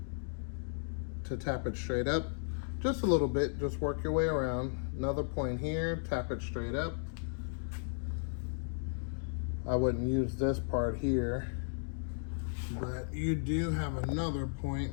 to tap it straight up, just a little bit, just work your way around. Another point here, tap it straight up. I wouldn't use this part here, but you do have another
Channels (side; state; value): right; silent; digital silence